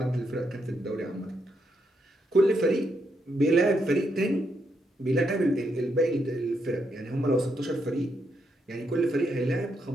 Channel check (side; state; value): both; normal; correlation 0.79